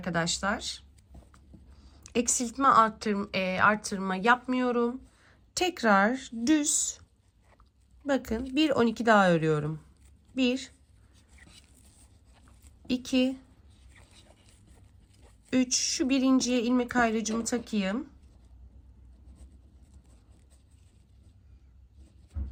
eksiltme arttırma yapmıyorum. Tekrar düz bakın bir 12 daha örüyorum. 1, 2, 3, şu birinciye ilmek ayrıcımı takayım.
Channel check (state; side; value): identical; both; correlation 1.00